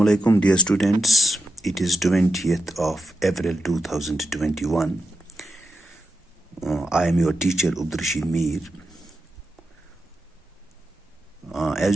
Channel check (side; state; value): both; normal; correlation 0.87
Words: alaikum, dear students. It is 20th of April 2021. I am your teacher, Abdurrashid Mir.